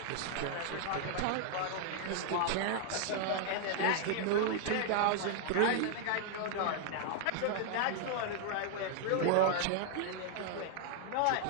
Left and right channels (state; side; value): different; both; correlation 0.00